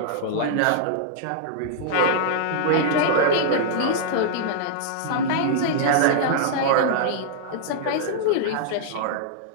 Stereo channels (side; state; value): both; different; correlation -0.02